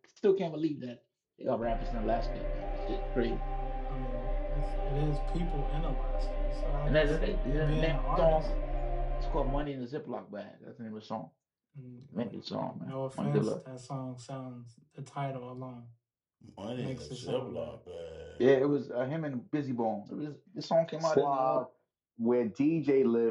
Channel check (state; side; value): identical; both; correlation 1.00